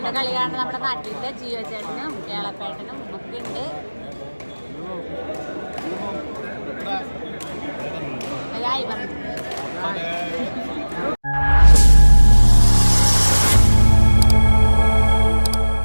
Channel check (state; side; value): inverted; both; correlation -1.00